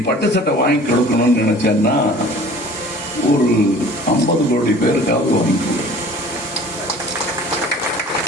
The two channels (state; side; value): normal; both; correlation 0.47